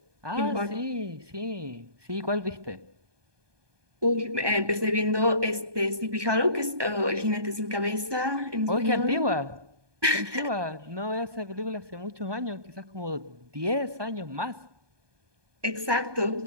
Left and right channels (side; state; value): left; late; 1.2 ms